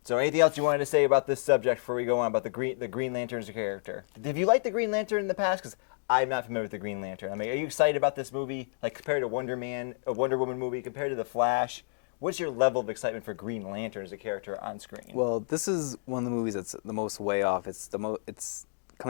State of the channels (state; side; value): silent; right; digital silence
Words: So anything else you wanted to say about this subject before we go on about the Green Lantern as a character? Have you liked the Green Lantern in the past? Because I'm not familiar with the Green Lantern. I mean, are you excited about this movie? Like compared to Wonder Woman movie, compared to The Flash? What's your level of excitement for Green Lantern as a character on screen? Well, this is one of the movies that's the most way off. It's